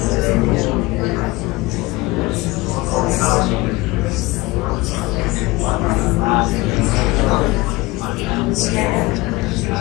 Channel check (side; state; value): right; quieter; 21.5 dB